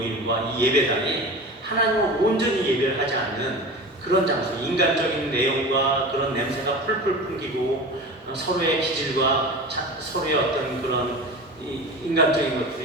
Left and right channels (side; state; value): both; normal; correlation 0.32